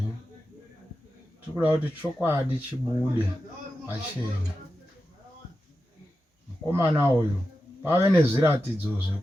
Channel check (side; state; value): both; normal; correlation 0.91